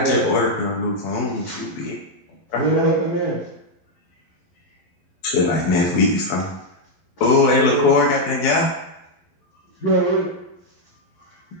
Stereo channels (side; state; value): right; late; 11 ms